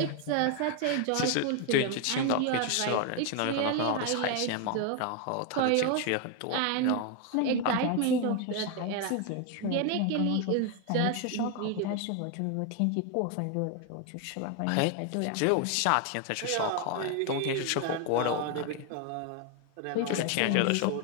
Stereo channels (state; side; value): different; both; correlation 0.01